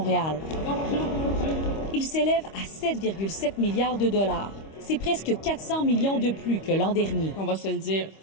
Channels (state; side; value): late; right; 25 ms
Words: Il s'élève à 7,7 milliards de dollars. C'est presque 400 millions de plus que l'an dernier. On va se le dire